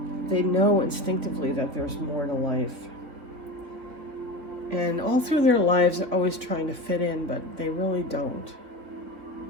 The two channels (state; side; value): late; left; 3.6 ms